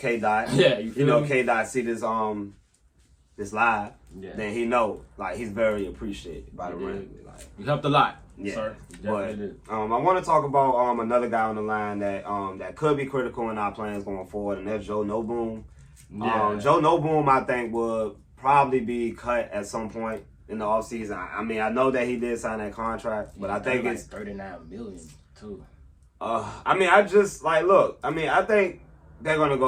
Yeah, you know, K-Dot see this this live, then he know, like, he's very appreciated by the Rams. Like, you helped a lot, yeah. Sir. But I want to talk about another guy on the line that could be critical in our plans going forward, and that's Joe Noboom. Yeah. Joe Noboom, I think, would probably be cut at some point in the offseason. I mean, I know that he did sign that contract, but I think it's $39 million too. I mean, I just look. I mean, I think they're gonna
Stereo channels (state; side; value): identical; both; correlation 1.00